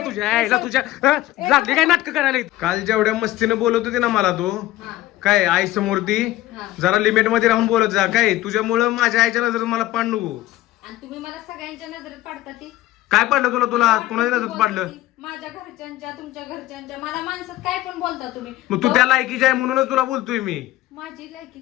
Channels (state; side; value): quieter; right; 15.7 dB